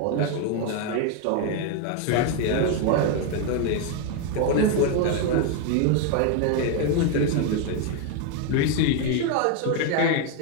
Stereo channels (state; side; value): different; both; correlation 0.01